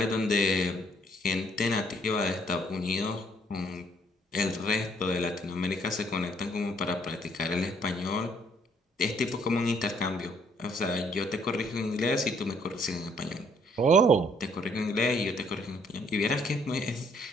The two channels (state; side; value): normal; both; correlation 0.66